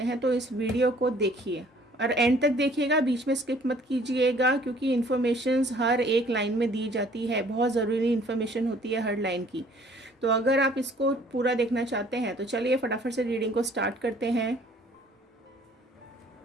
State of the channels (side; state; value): both; normal; correlation 0.57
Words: हैं तो इस वीडियो को देखिए और एंड तक देखिएगा, बीच में स्किप मत कीजिएगा, क्योंकि इन्फॉर्मेशंस हर एक लाइन में दी जाती है, बहुत ज़रूरी इन्फॉर्मेशन होती है हर लाइन की। तो अगर आप इसको पूरा देखना चाहते हैं तो चलिए फटाफट से रीडिंग को स्टार्ट करते हैं।